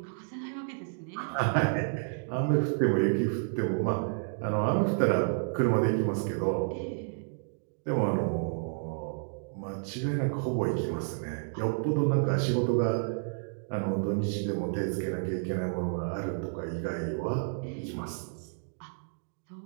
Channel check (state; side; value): silent; left; digital silence